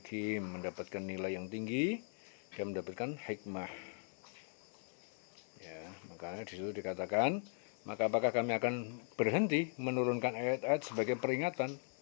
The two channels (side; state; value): right; silent; 52 dB below the other